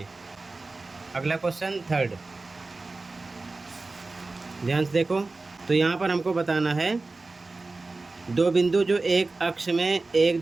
अगला क्वेश्चन थर्ड, ध्यान से देखो। तो यहाँ पर हमको बताना है दो बिंदु जो एक अक्ष में एक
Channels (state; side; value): quieter; left; 3.5 dB